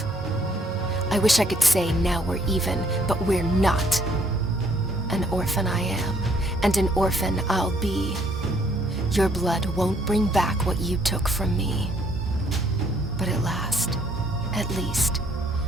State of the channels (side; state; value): both; normal; correlation 0.65